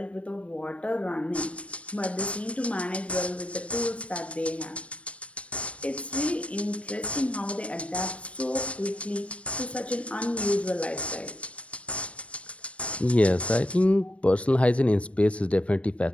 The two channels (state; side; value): late; right; 0.063 ms